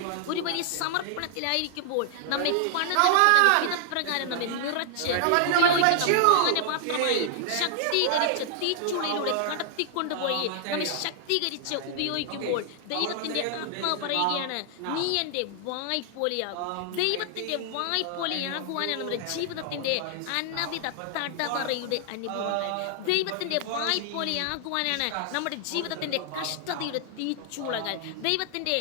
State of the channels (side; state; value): both; different; correlation 0.00